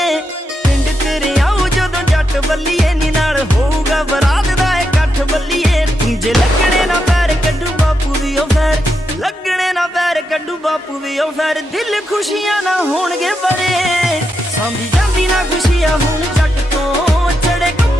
पिंड तेरे आऊ जदों जट बल्लीए नी नाल होऊगा बरात दा इकट्ठ बल्लीए जे लगणे ना पैर कड्डू बापू दी ओ फैर लगणे ना पैर कड्डू बापू दी ओ फैर दिल खुशियां ना होणगे बड़े सांभी जांदी ना खुशियां हुण जट तो चढ़े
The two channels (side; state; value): both; normal; correlation 0.84